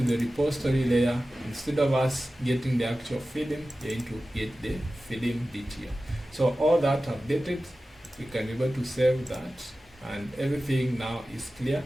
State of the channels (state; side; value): normal; both; correlation 0.95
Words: the repository layer. Instead of us getting the actual film, we are going to get the film DTO. So all that updated, we can be able to save that, and everything now is clear